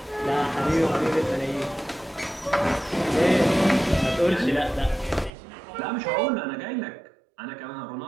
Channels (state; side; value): drops out; left; at 5.3 s